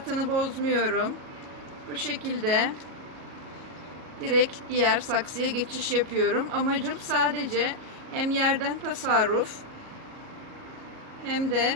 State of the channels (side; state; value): left; late; 37 ms